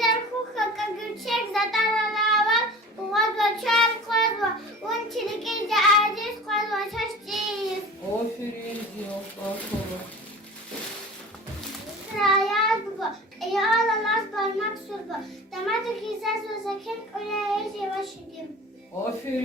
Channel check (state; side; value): normal; both; correlation 0.39